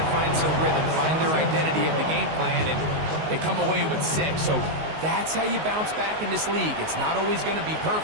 find some rhythm, find their identity of the game plan, and they come away with 6. So that's how you bounce back in this league. It's not always going to be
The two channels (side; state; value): left; late; 19 ms